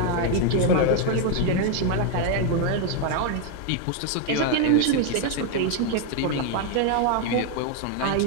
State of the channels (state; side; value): different; both; correlation 0.01